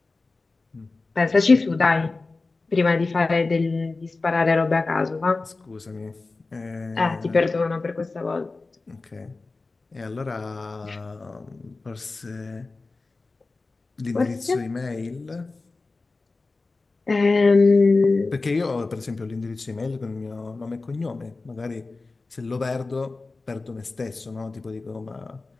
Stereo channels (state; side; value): quieter; right; 3.6 dB